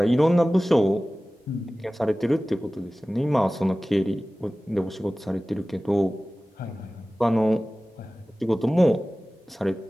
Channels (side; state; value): both; normal; correlation 0.97